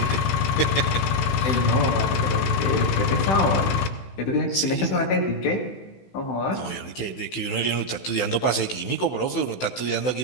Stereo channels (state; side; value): late; right; 16 ms